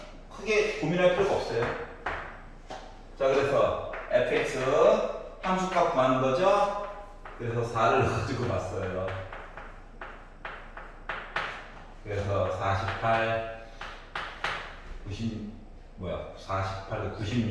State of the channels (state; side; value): identical; both; correlation 1.00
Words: 크게 고민할 필요가 없어요. 자, 그래서 fx 함수값 구하는 거죠. 그래서 4를 가지고 봤어요. 그래서 48,